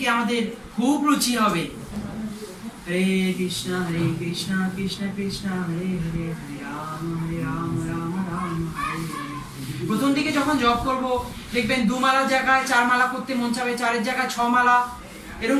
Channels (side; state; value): both; identical; correlation 1.00